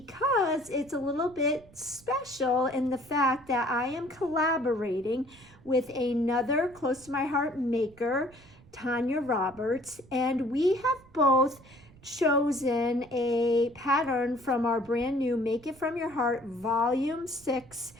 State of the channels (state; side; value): noise; right; rumble, 25 dB below the sound